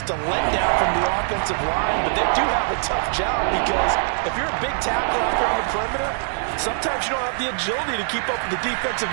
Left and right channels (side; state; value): left; silent; 64 dB below the other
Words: a letdown from the offensive line, but they do have a tough job because if you're a big tackle out there on the perimeter, sometimes you don't have the agility to keep up with the defensive